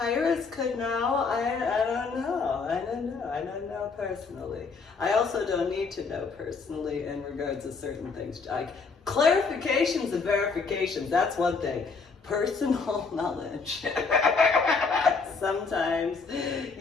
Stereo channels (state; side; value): quieter; right; 4.7 dB